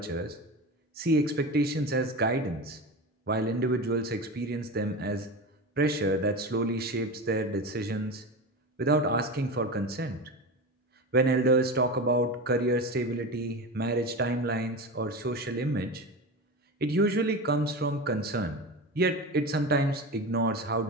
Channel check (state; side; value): normal; both; correlation 0.25